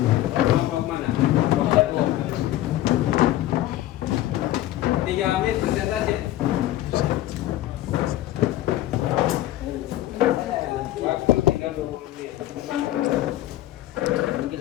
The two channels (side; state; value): right; quieter; 14.6 dB